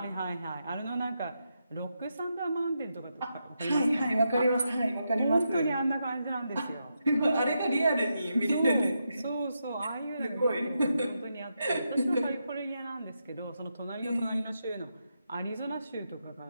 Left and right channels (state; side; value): inverted; both; correlation -0.84